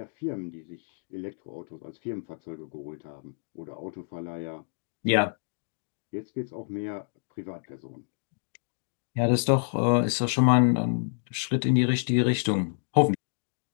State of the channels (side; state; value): right; silent; digital silence